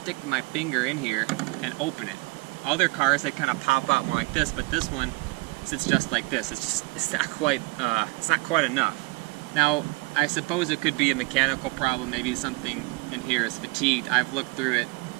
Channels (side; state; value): left; quieter; 24.4 dB